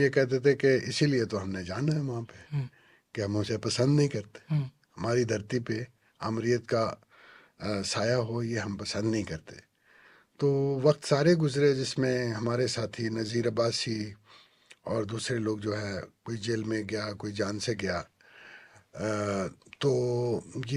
کہتے تھے کہ اسی لیے تو ہم نے جانا ہے وہاں پہ ہوں کہ ہم اسے پسند نہیں کرتے. ہوں ہماری دھرتی پہ آمریت کا سایہ ہو یہ ہم پسند نہیں کرتے. تو وقت سارے گزرے جس میں ہمارے ساتھی نذیر عباسی اور دوسرے لوگ جو ہے, کوئی جیل میں گیا, کوئی جان سے گیا. تو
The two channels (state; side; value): identical; both; correlation 1.00